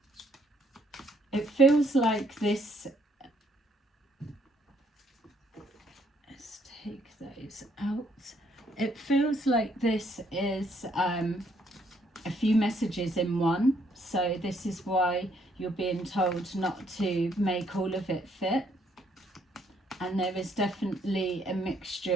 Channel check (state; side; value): normal; both; correlation 0.69